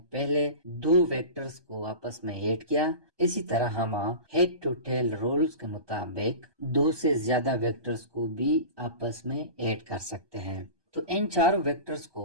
पहले 2 वेक्टर्स को आपस में ऐड किया, इसी तरह हम हेड टू टेल रूल्स के मुताबिक 2 से ज्यादा वेक्टर्स को भी आपस में ऐड कर सकते हैं। तो इन 4 वेक्टर्स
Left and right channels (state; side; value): late; left; 1.2 ms